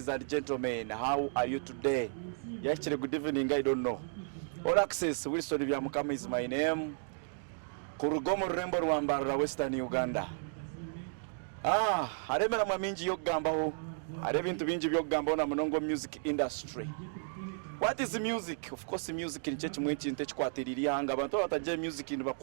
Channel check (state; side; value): silent; left; digital silence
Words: and gentlemen. How are you today? Actually, good evening, I don't know. All Access, Wilson Byamukama is my name. Kurugomo Rembo Rwambara, Western Uganda. Aremera maminji yogambaho. Arebintu binji byogambaho na munongo music industry. What is music? Of course, music ni chechi mwechi ntechi kwatiriri hanga. Bantu bataje music ni